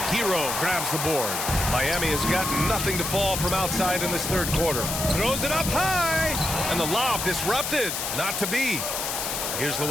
Hero grabs the board. Miami has got nothing to fall from outside in this third quarter. Throws it up high. And the lob disrupted. Not to be. Here's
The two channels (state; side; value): noise; left; hiss, 3 dB below the sound